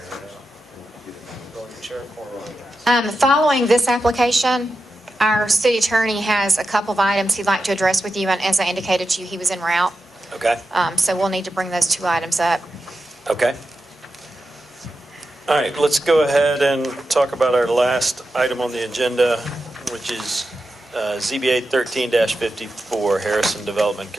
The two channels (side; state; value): both; normal; correlation 0.90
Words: go in your chair for a while. Following this application, our city attorney has a couple of items he'd like to address with you, and as I indicated to you, he was en route. Okay, So we'll need to bring those 2 items up. okay. All right, let's go ahead and talk about our last item on the agenda, which is ZBA 13-54, Harrison Development